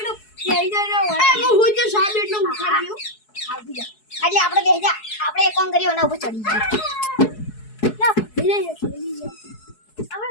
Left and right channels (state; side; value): late; right; 4.7 ms